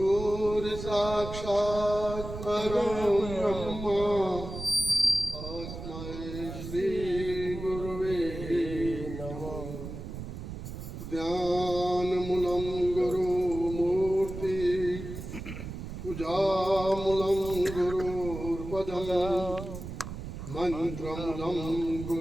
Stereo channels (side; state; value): right; noise; rumble, 9 dB below the sound